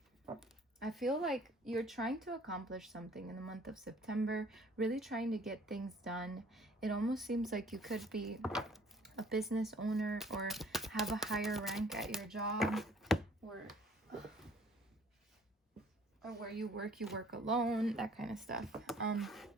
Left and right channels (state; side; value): normal; both; correlation 0.55